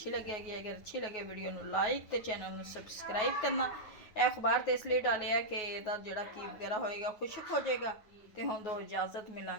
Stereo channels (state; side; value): late; right; 9.4 ms